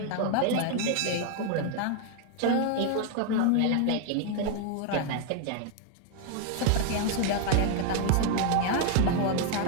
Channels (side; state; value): both; different; correlation 0.00